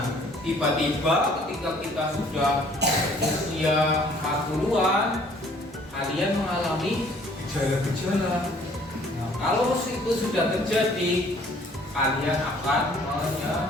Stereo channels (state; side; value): normal; both; correlation 0.57